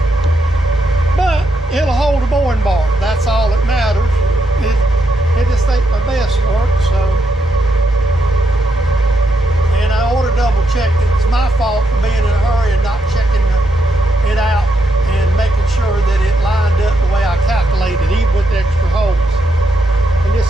but it'll hold a boring bar. That's all that matters. It just ain't my best work, so. And I ought to double check it. It's my fault for being in a hurry and not checking it out and making sure that it lined up the way I calculated, even with the extra holes. And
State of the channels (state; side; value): normal; both; correlation 0.80